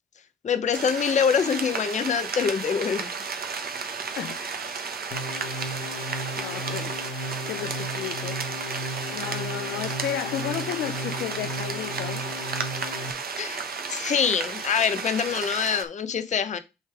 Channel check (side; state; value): right; quieter; 3.1 dB